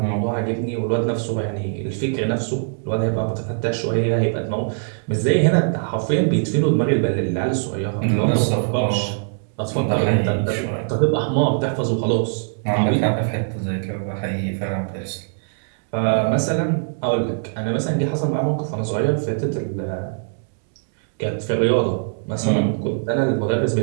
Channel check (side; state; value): left; silent; 64 dB below the other